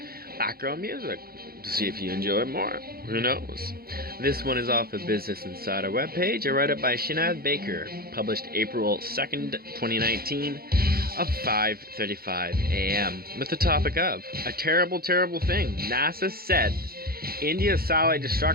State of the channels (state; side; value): late; left; 0.44 ms